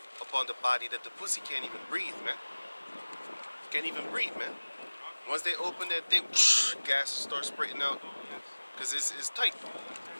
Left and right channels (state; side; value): inverted; both; correlation -1.00